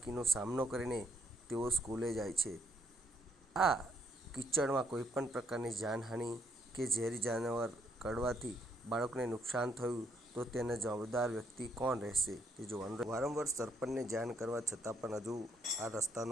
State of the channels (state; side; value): normal; both; correlation 0.71